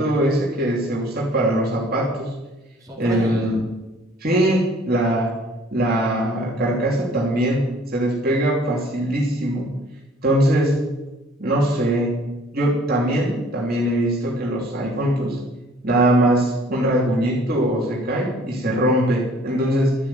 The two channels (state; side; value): normal; both; correlation 0.55